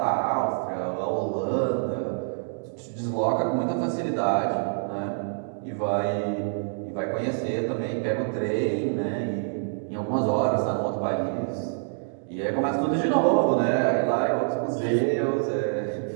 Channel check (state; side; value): silent; left; digital silence